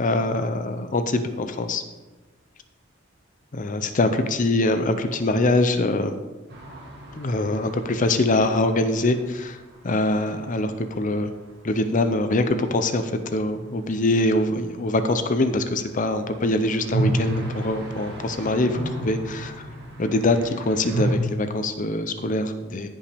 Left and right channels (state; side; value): normal; both; correlation 0.39